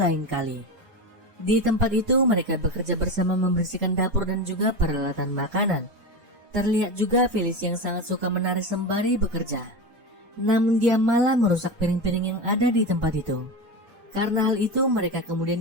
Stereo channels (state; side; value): late; left; 5.0 ms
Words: kali. Di tempat itu mereka bekerja bersama membersihkan dapur dan juga peralatan makanan. Terlihat juga Felici yang sangat suka menari sembari bekerja. Namun dia malah merusak piring-piring yang ada di tempat itu. Karena hal itu mereka